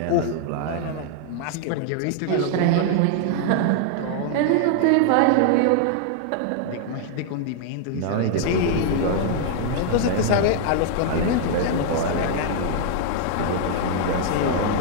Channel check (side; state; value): both; different; correlation -0.01